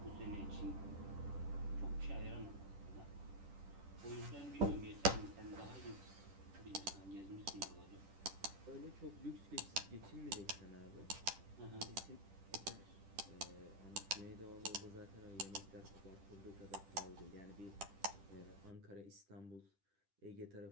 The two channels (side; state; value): left; late; 10 ms